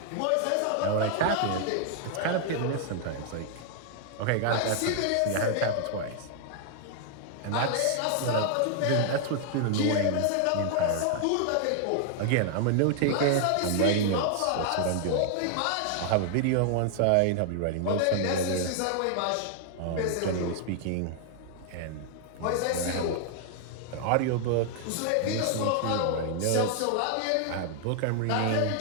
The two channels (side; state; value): both; different; correlation 0.00